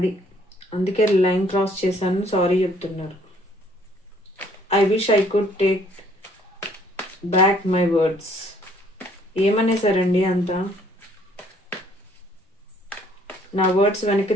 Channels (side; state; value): both; normal; correlation 0.62